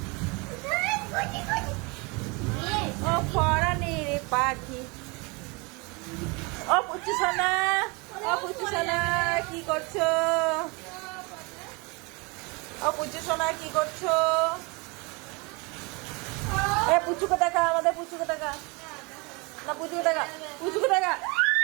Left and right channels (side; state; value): left; quieter; 28.4 dB